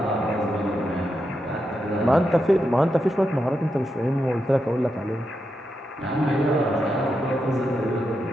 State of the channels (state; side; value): normal; both; correlation 0.85